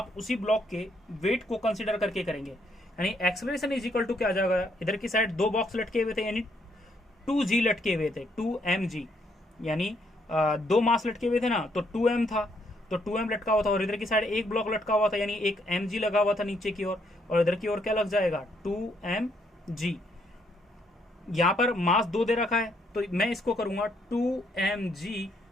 उसी ब्लॉक के वेट को कंसीडर करके करेंगे, यानी एक्सेलरेशन इज इक्वल टू क्या आ जाएगा, इधर की साइड 2 बॉक्स लटके हुए थे यानी 2g लटके हुए थे, 2mg, यानी 2 मास लटके हुए थे ना, तो 2m था, तो 2m लटका हुआ था, और इधर की साइड एक ब्लॉक लटका हुआ था यानी एक mg लगा हुआ था नीचे की ओर, और इधर की ओर क्या लग जाएगा 2mg। यहाँ पर मास 2 दे रखा है, तो मैं इसको करूंगा 2mg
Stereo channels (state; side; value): normal; both; correlation 0.72